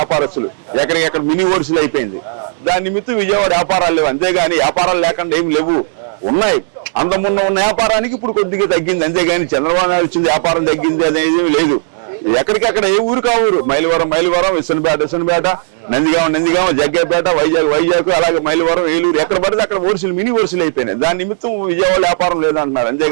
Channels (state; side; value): silent; left; digital silence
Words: ఎక్కడికెక్కడ మినీ హోల్సేల్ అయిపోయింది. దాని నిమిత్తం విజయవాడ వ్యాపారాలు లేవు. అంతేగాని వ్యాపారాలు లేకుండా ఏమి లేవు, ఉన్నాయి. అంత ముందు ఉన్న వ్యాపారానికి ఇప్పుడు కొద్దిగా తగ్గింది. అంతేగాని చంద్రబాబు నాయుడు వచ్చింది వ్యాపారం తగ్గింది అనేది లేదు. ఎక్కడికక్కడ ఏ ఊరు కా ఊరు, మైలవరం, విసనపేట, నందిగామ, జగ్గేపేట, వైజాగ్ అలాగే మైలవరం, ఏలూరు, ఎక్కడ పడితే అక్కడ హోల్సేల్ మినీ హోల్సేల్ అయిపోయినాయి. దాని నిమిత్తం విజయవాడ వ్యాపారం లేదంటున్నారు.